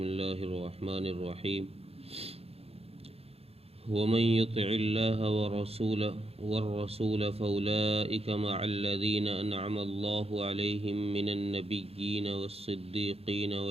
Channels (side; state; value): left; late; 0.29 ms